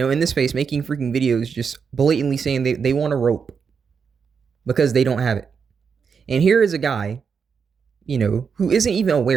this space making freaking videos just blatantly saying they want a rope because they don't have it. And here is a guy, who isn't even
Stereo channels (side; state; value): left; quieter; 6.1 dB